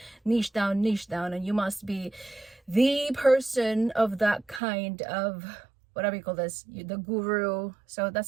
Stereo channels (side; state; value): left; drops out; at 4.6 s